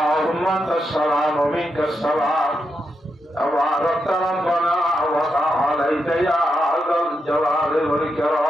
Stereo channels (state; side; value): normal; both; correlation 0.84